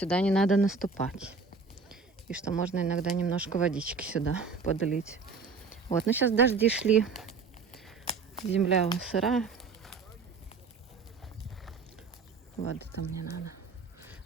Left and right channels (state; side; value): quieter; left; 4.7 dB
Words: не надо наступать. И что можно иногда немножко водички сюда подлить. Вот, ну сейчас дожди шли. Земля сырая. Воды там не надо.